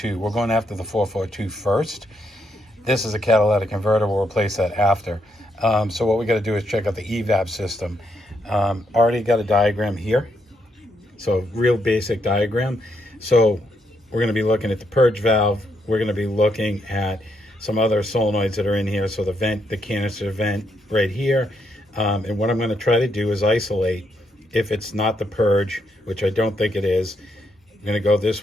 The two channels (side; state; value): both; normal; correlation 0.77